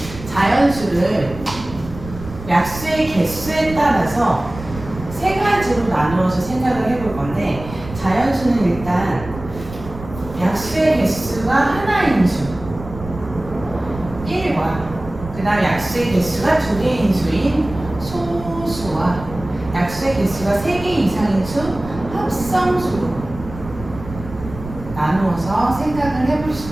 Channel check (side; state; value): right; noise; rumble, 13 dB below the sound